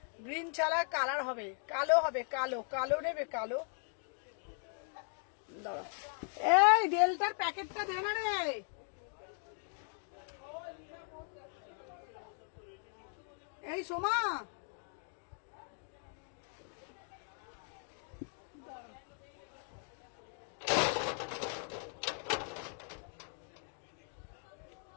গ্রিন ছাড়া কালার হবে, কালো হবে, কালো কালো নেবে, কালো। দাঁড়া, এই ডেল্টার প্যাকেটটা দে না রে। এই সোমা,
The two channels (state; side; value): silent; right; 52 dB below the other